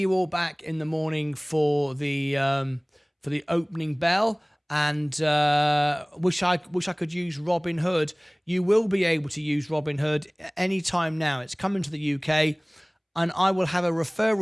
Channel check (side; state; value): both; identical; correlation 1.00